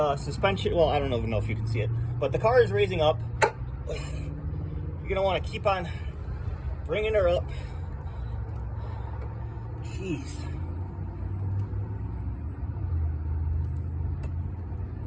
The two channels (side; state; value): both; identical; correlation 1.00